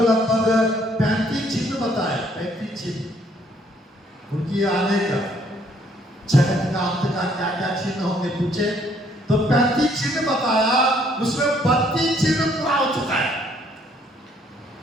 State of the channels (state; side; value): normal; both; correlation 0.65